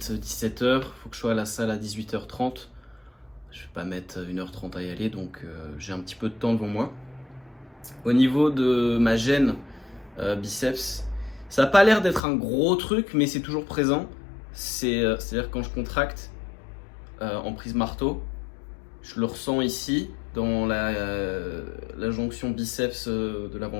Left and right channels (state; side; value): drops out; right; at 12.2 s